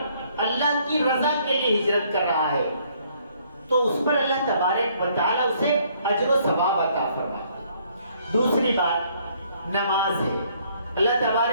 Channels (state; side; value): inverted; both; correlation -0.65